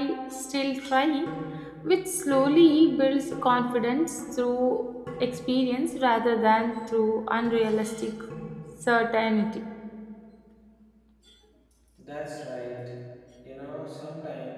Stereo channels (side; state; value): both; identical; correlation 1.00